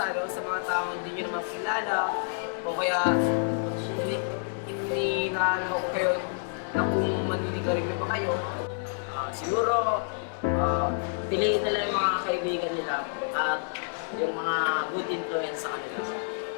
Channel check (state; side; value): silent; right; 59 dB below the other